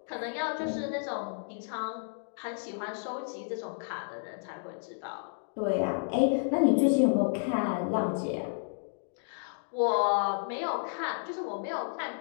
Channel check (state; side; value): silent; right; digital silence